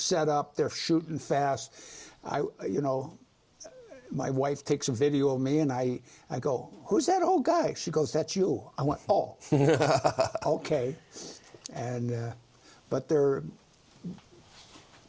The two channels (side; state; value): both; identical; correlation 1.00